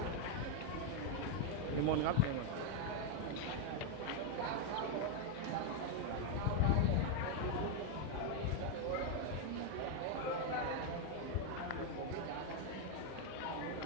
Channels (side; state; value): both; different; correlation 0.01